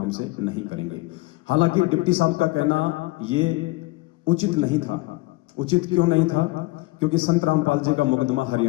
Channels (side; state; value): right; quieter; 21.7 dB